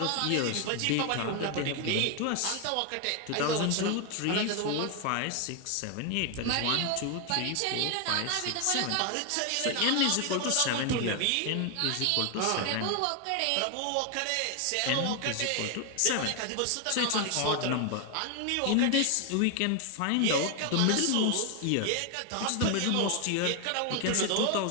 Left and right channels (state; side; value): different; both; correlation 0.01